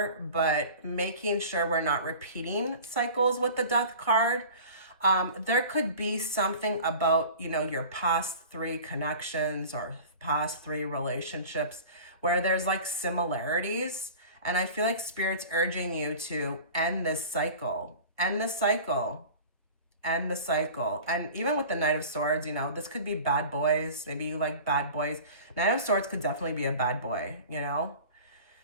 but making sure we're not repeating cycles with the Death card. There could be something about, you know, your past 3 connections or past 3 relationships where there's like similarities. And I feel like Spirit's urging you to end this cycle, end the cycle, end the cycle. And even with the Knight of Swords, you know, this could be bad boys. Maybe you like bad boys. Knight of Swords could definitely be a bad boy, you know.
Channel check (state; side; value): inverted; both; correlation -0.40